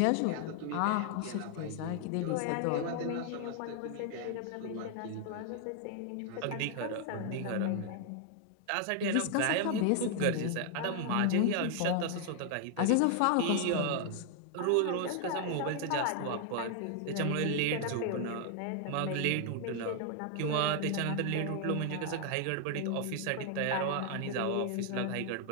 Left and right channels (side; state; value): both; different; correlation 0.00